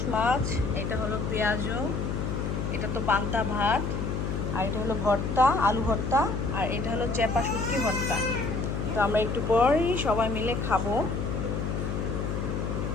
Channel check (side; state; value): left; noise; hum, 2 dB below the sound